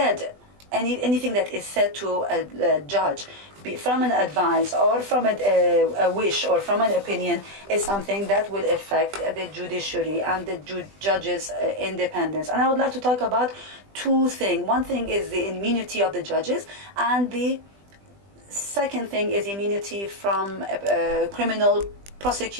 anything that is said to a judge, from an advice or from a wish or from an opinion, is something that will affect the judiciary and the judges' independence. And I would like to talk about two things. One thing is the immunity of the judges, and the second thing is immunity from criminal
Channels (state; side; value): late; left; 20 ms